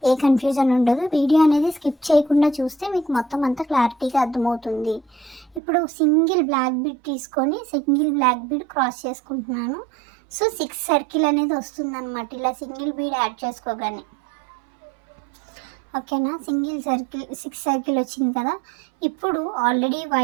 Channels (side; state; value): left; drops out; at 5.6 s